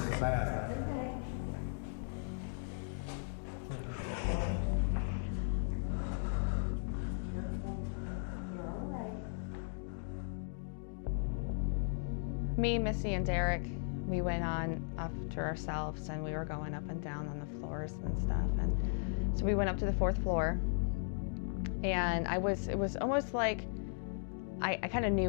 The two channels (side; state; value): right; silent; digital silence